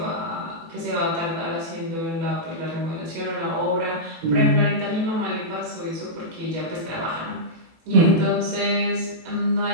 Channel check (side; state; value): left; late; 18 ms